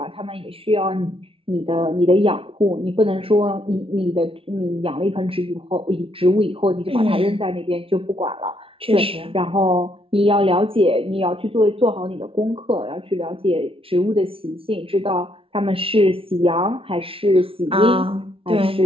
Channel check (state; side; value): late; left; 0.26 ms